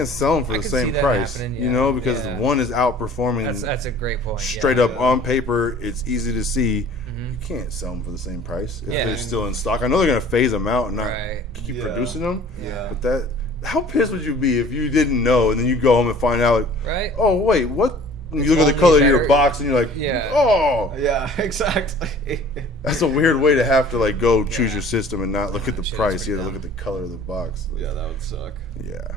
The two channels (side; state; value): both; normal; correlation 0.49